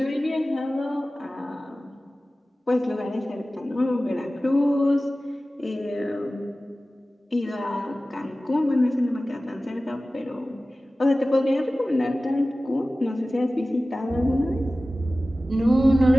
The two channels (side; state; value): both; normal; correlation 0.96